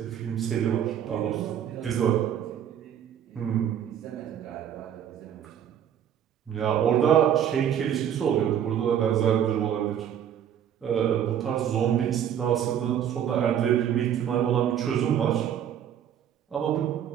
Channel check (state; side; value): quieter; left; 9.5 dB